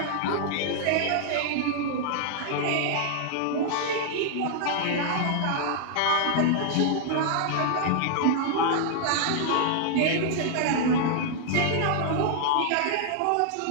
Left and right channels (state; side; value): different; both; correlation -0.01